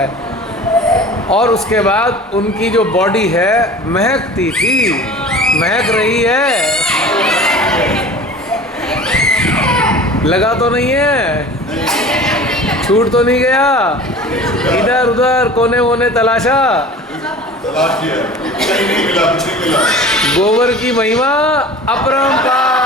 और उसके बाद उनकी जो बॉडी है महकती थी, महक रही है। लगा तो नहीं है? छूट तो नहीं गया? इधर उधर कोने वोने तलाशा, तलाश किया, कहीं नहीं मिला, कुछ नहीं मिला। गोबर की महिमा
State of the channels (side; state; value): both; normal; correlation 0.40